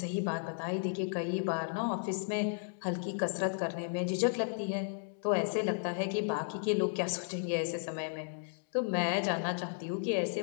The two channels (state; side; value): silent; right; digital silence